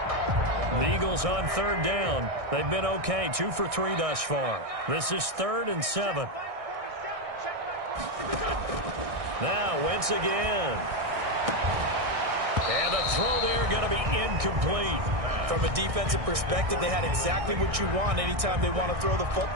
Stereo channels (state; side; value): late; left; 1.6 ms